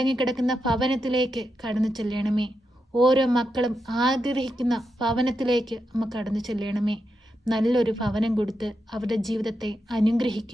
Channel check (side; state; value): both; normal; correlation 0.86